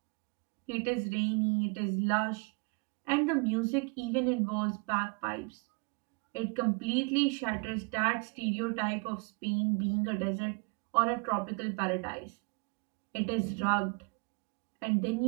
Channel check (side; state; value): left; quieter; 32.4 dB